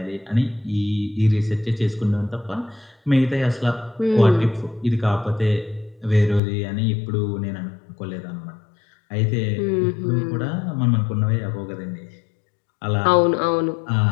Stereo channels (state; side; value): drops out; right; at 6.4 s